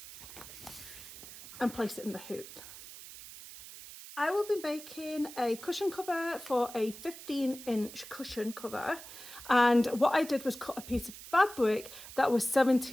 and place it in the hoop. I will be making a cushion cover for a 15-inch cushion cover, and what I did was cut a piece of fabric that was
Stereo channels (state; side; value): noise; right; hiss, 14 dB below the sound